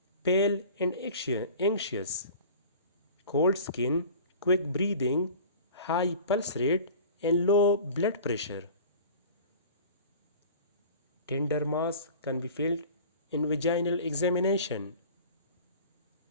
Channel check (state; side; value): inverted; both; correlation -0.41